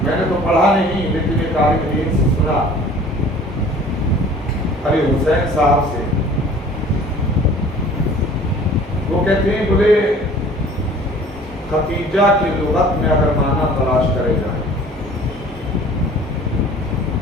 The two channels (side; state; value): both; normal; correlation 0.48